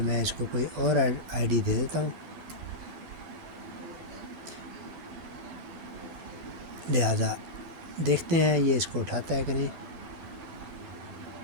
میں اس کو کوئی اور آئی ڈی دے دیتا ہوں، لہٰذا دیکھتے ہیں یہ اس کو اٹھاتا ہے کہ نہیں۔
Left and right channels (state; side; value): late; left; 12 ms